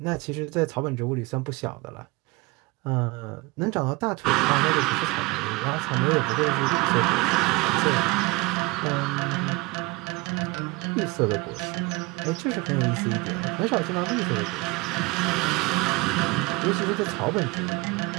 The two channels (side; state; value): left; quieter; 24.2 dB